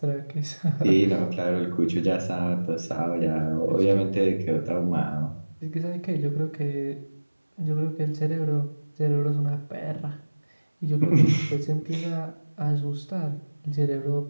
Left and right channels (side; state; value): both; inverted; correlation -1.00